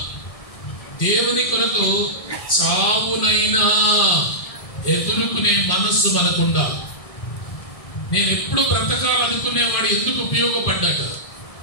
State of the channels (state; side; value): late; right; 1.6 ms